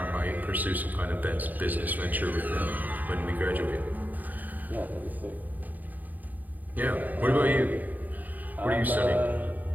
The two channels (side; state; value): left; late; 0.083 ms